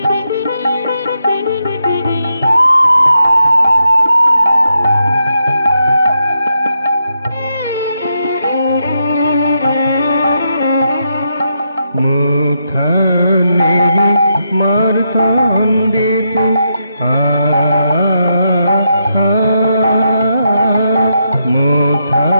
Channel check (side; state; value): both; inverted; correlation -0.82